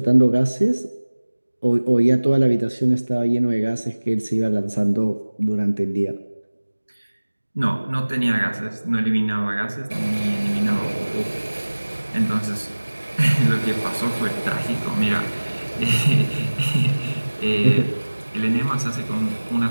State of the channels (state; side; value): inverted; both; correlation -1.00